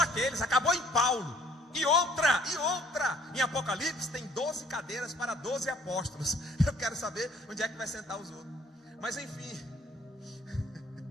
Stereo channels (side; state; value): both; normal; correlation 0.59